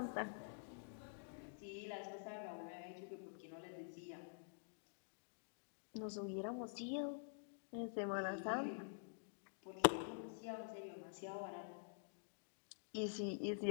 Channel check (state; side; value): silent; right; digital silence